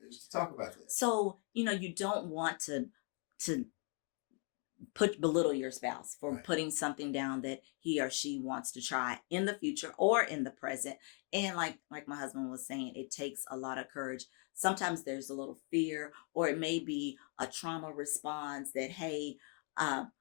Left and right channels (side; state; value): right; quieter; 39.3 dB